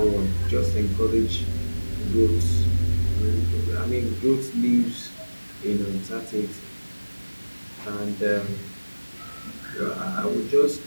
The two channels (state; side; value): inverted; both; correlation -1.00